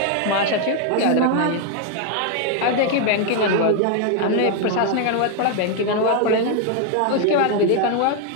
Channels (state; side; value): different; both; correlation 0.00